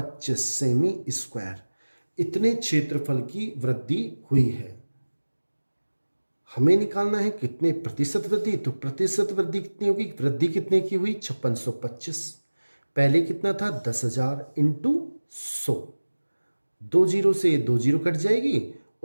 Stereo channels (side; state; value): both; inverted; correlation -1.00